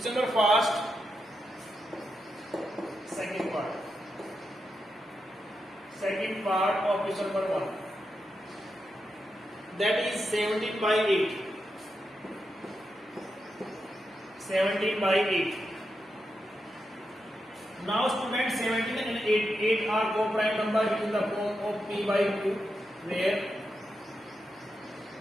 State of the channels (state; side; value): normal; both; correlation 0.86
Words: number first. Second part of question number 1. That is 17 by 8. 17 by 8. Now students, 17 and 8 are co-prime number in the form of P by Q, where